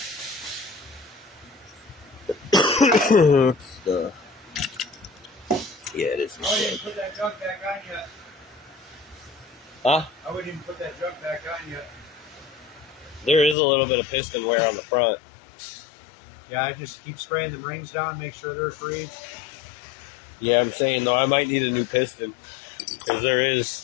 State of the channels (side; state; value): right; drops out; at 13.6 s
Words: Yeah, it is. I wouldn't even put that junk back on yet. Huh? I wouldn't even put that junk back on yet. There is a little bit of piston wear on the front. Yeah, I just keep spraying the rings down, make sure they're free. Yeah, I'm saying though, I might need a new piston. Because there